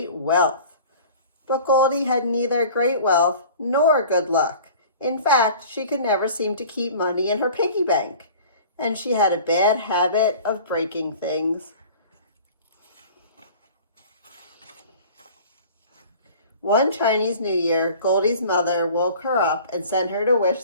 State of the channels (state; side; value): inverted; both; correlation -0.44